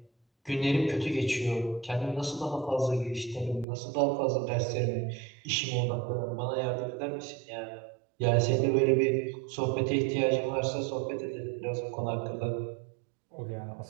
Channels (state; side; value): drops out; left; at 3.7 s